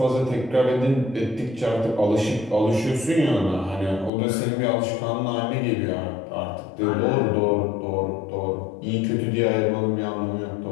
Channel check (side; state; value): right; drops out; at 4.1 s